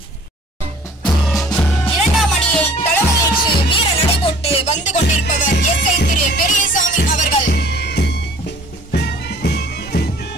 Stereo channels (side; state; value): both; normal; correlation 0.51